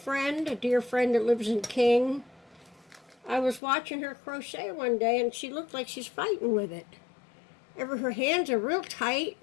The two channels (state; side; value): drops out; right; at 3.6 s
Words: a dear friend that lives in King. I was watching her crochet one day and she looked like she's fighting with it. Her hands are real tight